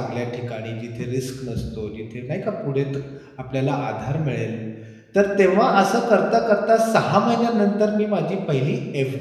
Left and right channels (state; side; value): identical; both; correlation 1.00